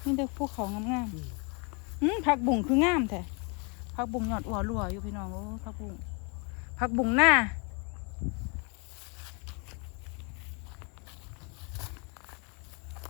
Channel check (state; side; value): quieter; right; 33.4 dB